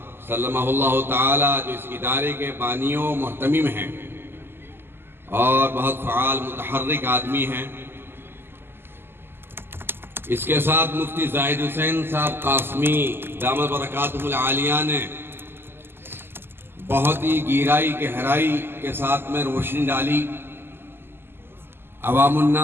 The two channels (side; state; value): left; late; 0.11 ms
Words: سلمہ اللہ تعالیٰ، جو اس ادارے کے بانیوں محتمم ہیں اور بہت فعال متحرک آدمی ہیں۔ اس کے ساتھ مفتی زاہد حسین صاحب قاسمی دامت برکاتہ العالیہ نے بہت ہی گہرائی گہرائی کے ساتھ میں روشنی ڈالی، عوام